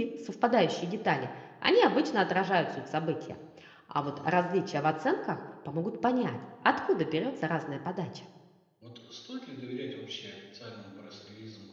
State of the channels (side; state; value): both; identical; correlation 1.00